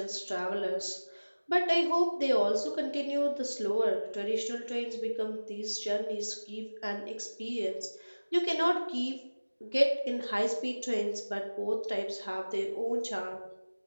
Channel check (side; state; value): both; inverted; correlation -1.00